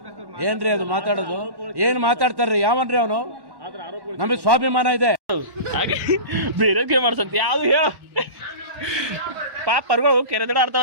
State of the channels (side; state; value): left; late; 1.1 ms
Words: ಏನ್ರಿ ಅದು ಮಾತಾಡೋದು ಏನ್ ಮಾತಾಡ್ತಾರ್ರಿ ಯಾವನ್ರಿ ಅವನು ನಮಗೆ ಸ್ವಾಭಿಮಾನ ಇದೆ ಹಾಗೆ ಬೇರೆ ಗೇಮ್ ಆಡ್ಸಂತ ಯಾವ್ದು ಹೇಳ ಪಾಪ ಪರ್ಗಳು ಕೆರೆ ದಡ